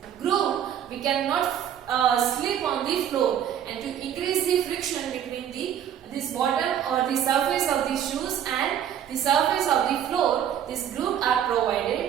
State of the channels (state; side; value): quieter; left; 9.7 dB